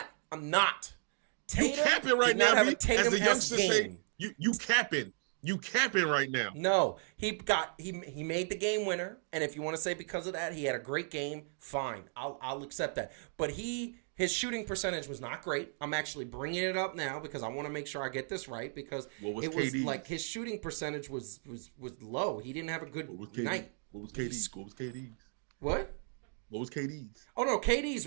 I'm not. You Tatum capping right did not now, have a B. As the Tatum-esque youngsters say, game. you capping. You capping right now. No, he made the game winner, and if you want to say because of that he had a great game, fine, I'll accept that. But his shooting percentage was not great. I'm actually bringing it up now because I want to make sure I get this right because What was it KD? was like his shooting percentage was low. He didn't have a good night. What was KD's? What was KD's? What? What was KD's? Oh no, KD's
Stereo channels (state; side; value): silent; left; 55 dB below the other